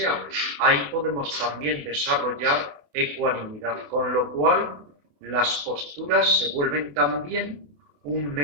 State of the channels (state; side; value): late; left; 28 ms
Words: Ahí podemos también desarrollar ecuanimidad, con lo cual las posturas se vuelven también un